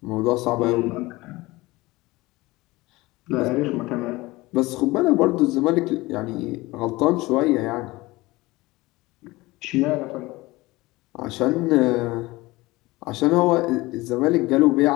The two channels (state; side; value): quieter; right; 20.7 dB